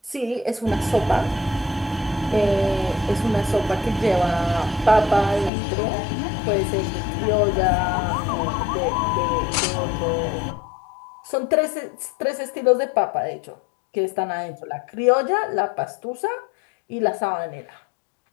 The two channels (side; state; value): right; drops out; at 5.5 s